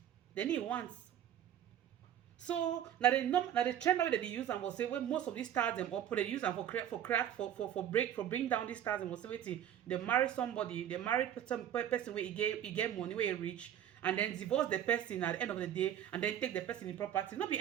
So now the trend that they use and will say when most of these stars them up they use them for bring down these stars and will say wait, they marry somebody, they married some person where he get money where he rich, and then divorce the person at the end of the day, and then take the person in property, not be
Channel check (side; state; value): left; quieter; 10.5 dB